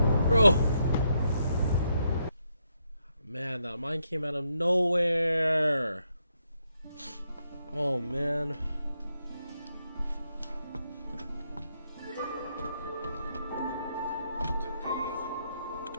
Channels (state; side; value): inverted; both; correlation -0.79